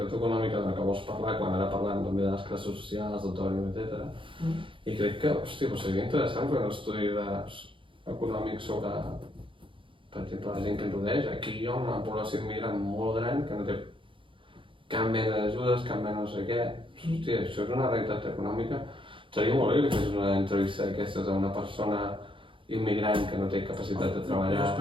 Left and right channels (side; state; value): left; late; 0.25 ms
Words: econòmica de la que vols parlar, quan ara parlant també de les classes socials, d'autònom, etc. I crec que, hòstia, seria interessant fer un estudi econòmic sobre, per exemple, la gent que ens rodeix. Aquí hi ha una població immigrant molt gran que no té cap mena d'ajudes, cap mena no sé què. Hòstia, això és una realitat econòmica. Seria molt bé que fes una entrevista d'aquestes a una persona immigrant que no té capacitat de treballar. Jo